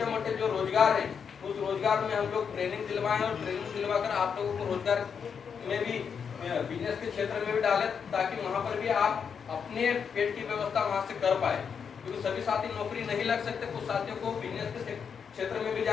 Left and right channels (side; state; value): right; quieter; 6.7 dB